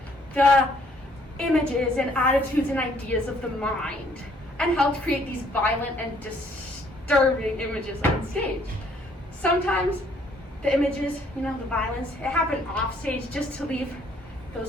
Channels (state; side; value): normal; both; correlation 0.64